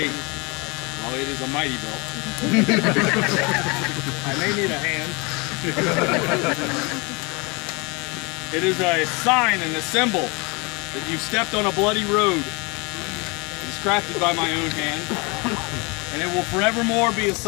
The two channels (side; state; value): right; quieter; 28.0 dB